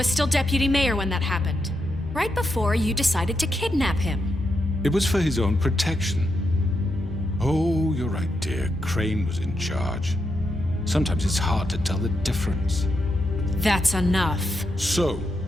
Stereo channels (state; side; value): normal; both; correlation 0.83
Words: still deputy mayor when that happened. Right before you decided to kidnap him. It was for his own protection. Oh, you're right, dear. Crane was in charge. Sometimes it's hard to tell the difference. That's enough. So,